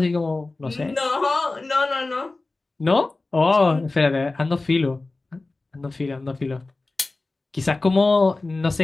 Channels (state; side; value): quieter; right; 3.3 dB